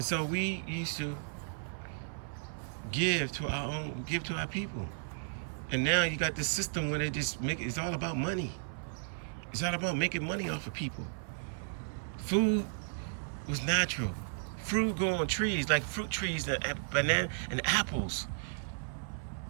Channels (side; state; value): left; silent; 55 dB below the other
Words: so we used to give to our people. And now you got this system where they just it's all about money. It's all about making money off of people. Food was natural. Fruit grow on trees, like fruit trees, banana and apples.